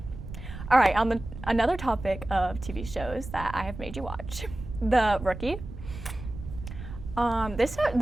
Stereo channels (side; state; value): right; noise; rumble, 11 dB below the sound